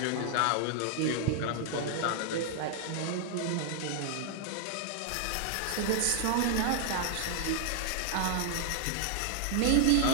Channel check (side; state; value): both; different; correlation 0.00